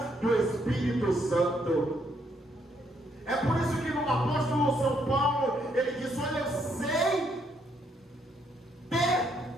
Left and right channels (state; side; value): normal; both; correlation 0.72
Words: do Espírito Santo? É por isso que no apóstolo São Paulo ele diz, olha, eu sei ter